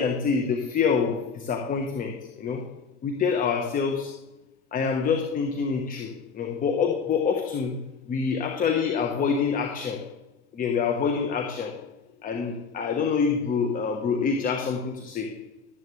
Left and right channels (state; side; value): quieter; right; 5.5 dB